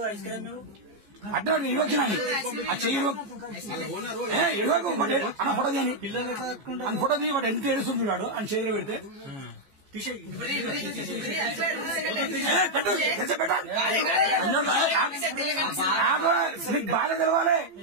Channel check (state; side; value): late; left; 15 ms